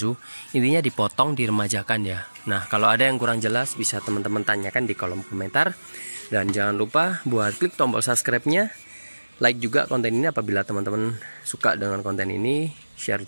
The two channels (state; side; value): inverted; both; correlation -1.00